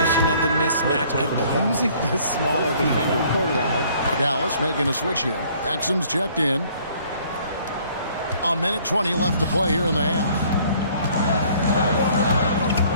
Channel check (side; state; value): both; inverted; correlation -0.58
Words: of the mismatch, abusing the smaller defender quarterback. Dallas making a switch here. Exum's checked in. A minute 20 left to play here in the half.